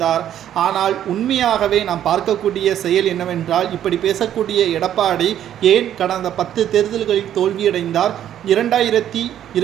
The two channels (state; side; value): quieter; left; 10.8 dB